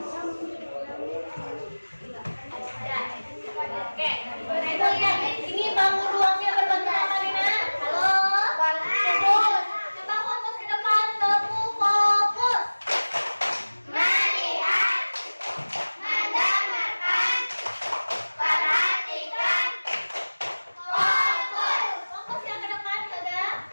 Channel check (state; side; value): inverted; both; correlation -1.00